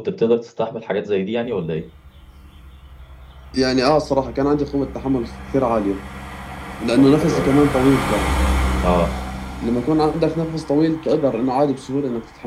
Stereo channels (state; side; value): identical; both; correlation 1.00